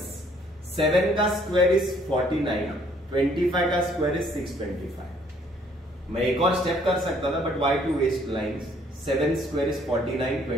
7 का square is 49, 25 का square is 625. मैं एक और step कर सकता था, but why to waste lines? 7 square is 49,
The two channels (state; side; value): normal; both; correlation 0.63